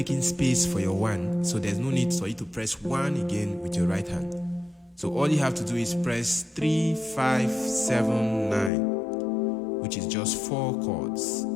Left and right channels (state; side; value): drops out; right; at 8.7 s